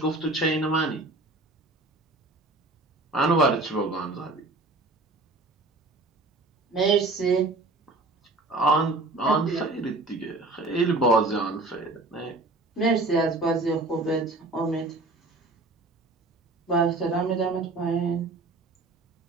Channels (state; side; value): quieter; left; 3.1 dB